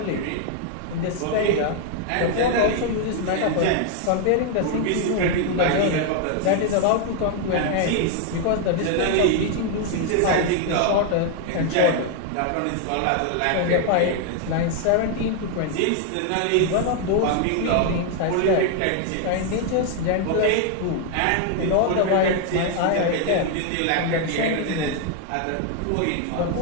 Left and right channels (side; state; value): both; different; correlation 0.00